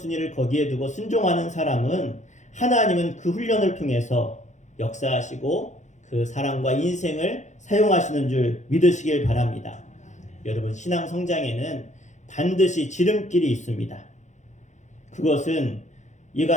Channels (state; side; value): late; right; 0.34 ms